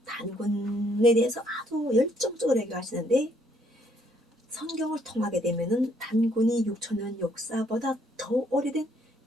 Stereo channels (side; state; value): both; normal; correlation 0.68